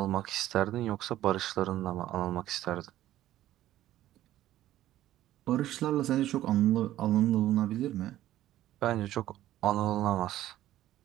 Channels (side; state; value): left; quieter; 13.8 dB